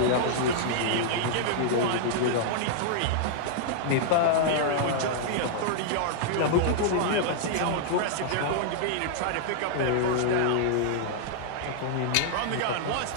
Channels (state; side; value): different; both; correlation -0.01